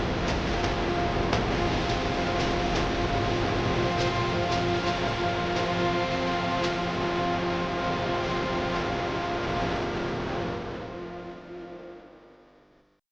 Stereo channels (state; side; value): identical; both; correlation 1.00